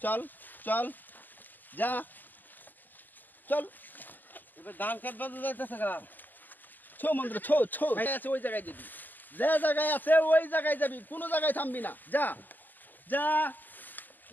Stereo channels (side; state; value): right; late; 0.086 ms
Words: চল চল যা চল এবার ধান খেত বাজে যাইতেছে গা ছো মন্ত্র ছো ছো আছে ওই জায়গায় যাবি যে জায়গায় আছে ওই জায়গায় যাবি কোনো জায়গায় থামবি না যা যা